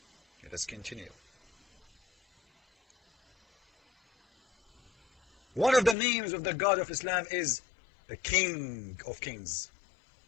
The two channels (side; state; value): right; drops out; at 6.0 s